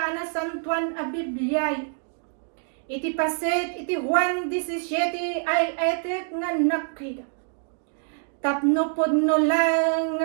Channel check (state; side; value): silent; left; 61 dB below the other